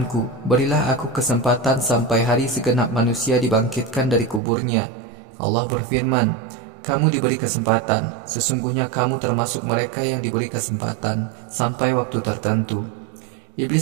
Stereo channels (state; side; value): drops out; left; at 4.4 s